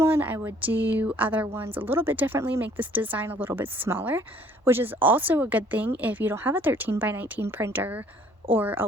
I would do other ones a little bit differently, make this design a little bit smaller, which is also a good thing if you don't have a 13 by 19 printer or a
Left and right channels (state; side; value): normal; both; correlation 0.58